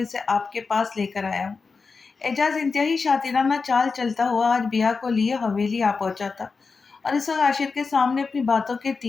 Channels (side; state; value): right; quieter; 4.6 dB